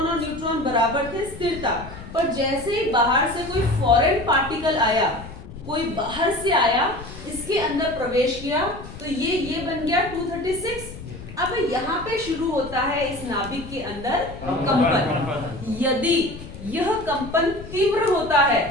और न्यूट्रॉन बराबर थे, स्थिर था। पर जैसे ही बाहर से कोई फॉरेन पार्टिकल आया, कोई बाहर से आया, इसके अंदर प्रवेश किया, तो ये बन गया 236। अब यहाँ पे शुरू होता है इस नाभिक के अंदर कंपन। यदि यह कंपन तीव्र होता है,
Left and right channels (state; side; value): noise; left; rumble, 14 dB below the sound